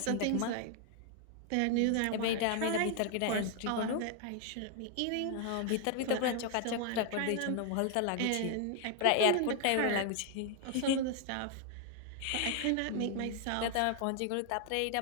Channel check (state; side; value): different; both; correlation 0.00